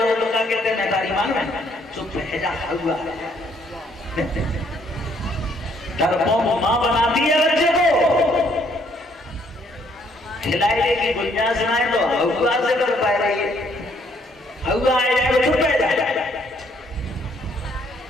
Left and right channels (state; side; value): normal; both; correlation 0.67